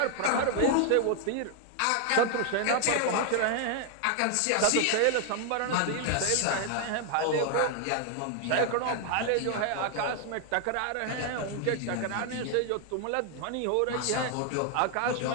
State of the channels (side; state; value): both; different; correlation 0.00